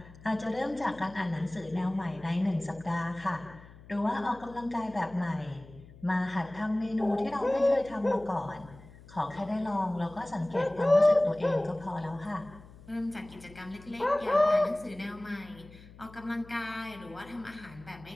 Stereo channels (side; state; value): left; noise; hum, 20 dB below the sound